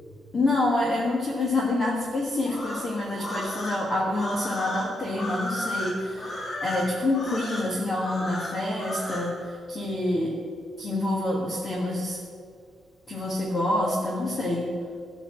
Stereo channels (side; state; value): both; normal; correlation 0.80